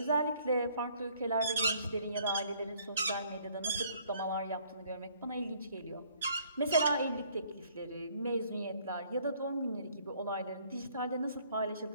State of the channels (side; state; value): both; inverted; correlation -0.62